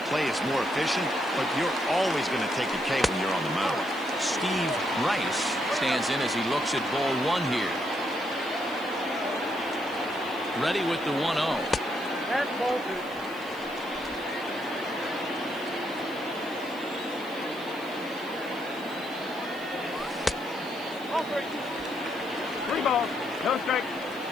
play is more efficient, but you're always going to take a K when you're on the mound. Steve Rice stands in as he looks at ball 1 here. Ready with the 1-0. And ball 2. Three balls, no strikes.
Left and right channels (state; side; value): noise; right; hiss, 22 dB below the sound